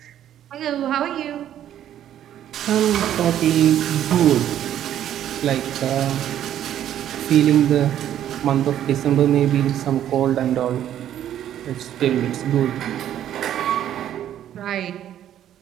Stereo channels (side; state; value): left; quieter; 11.1 dB